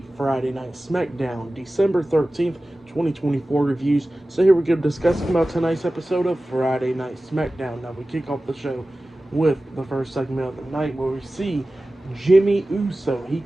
Friday Night SmackDown, December 13th, 2024 reviews. So here we go, discussing about tonight's episode of Friday Night SmackDown. Now, we kick off the show with the first segment of the night, where we see Jimmy Uso. He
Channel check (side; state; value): both; normal; correlation 0.96